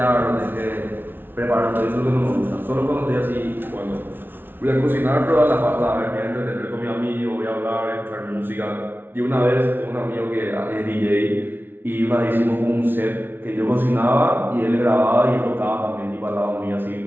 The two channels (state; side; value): late; left; 0.10 ms